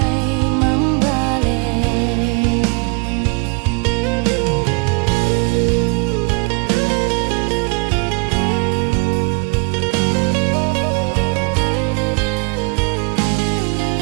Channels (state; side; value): quieter; left; 33.1 dB